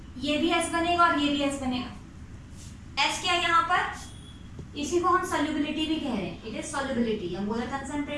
ये भी S बनेगा और ये भी S बनेगा। S क्या है यहाँ पर, इसी को हम सॉल्युबिलिटी भी कह रहे हैं, इट इज सॉल्युबिलिटी या मोलर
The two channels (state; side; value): identical; both; correlation 1.00